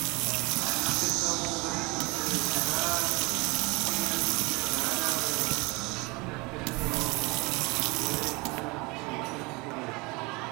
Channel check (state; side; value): quieter; left; 26.1 dB